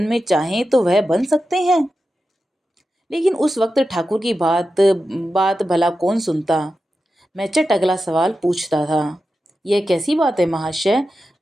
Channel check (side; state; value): both; normal; correlation 0.91